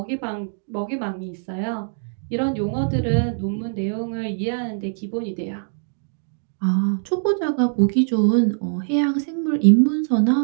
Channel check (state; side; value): silent; left; digital silence